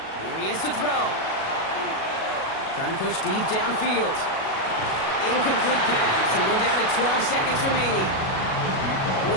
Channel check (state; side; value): late; right; 37 ms